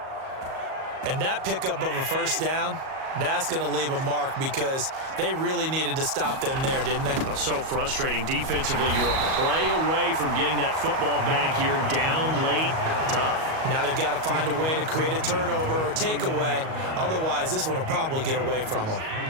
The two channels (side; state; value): left; late; 38 ms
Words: And that pickup of a first down, that's going to leave a mark because they really needed to stop them there, didn't they? So frustrating. Defensively, you're a play away from getting that football back here down late. Tough. Now they've got to find a way to create a turnover or a takeaway. Otherwise, this one will probably get away from them.